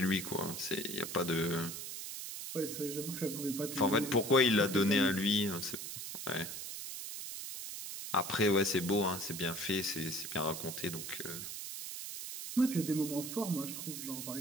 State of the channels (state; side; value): noise; right; hiss, 7 dB below the sound